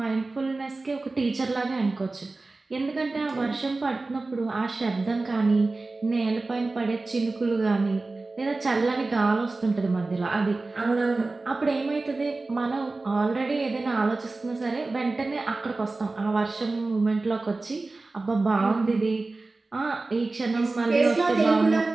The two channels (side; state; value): left; quieter; 3.4 dB